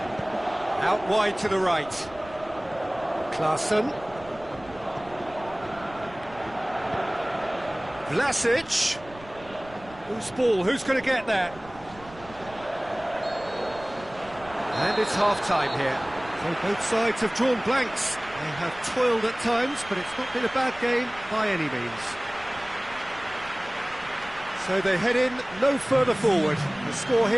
Out wide to the right. Klaassen. Vlasic. Whose ball? Who's going to get that? And it's half-time here. So both sides have drawn blanks. They have toiled at times, but it's not been a bad game by any means. So they head in no further forward. The score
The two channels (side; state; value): right; noise; rumble, 20 dB below the sound